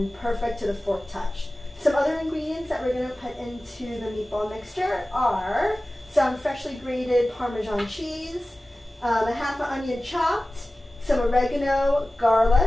perfect to the fork touch. Some other ingredients that we're going to put into the meatball mixture are some freshly grated Parmesan cheese, a half an onion chopped, some oregano,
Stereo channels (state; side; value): normal; both; correlation 0.96